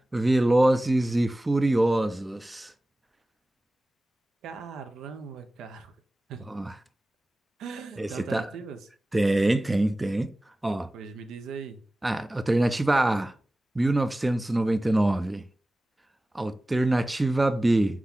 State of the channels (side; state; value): both; normal; correlation 0.97